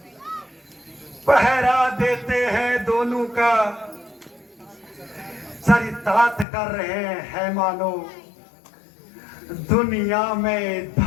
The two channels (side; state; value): right; drops out; at 6.5 s